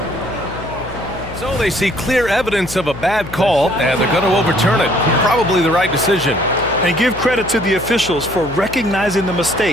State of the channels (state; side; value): noise; left; hum, 13 dB below the sound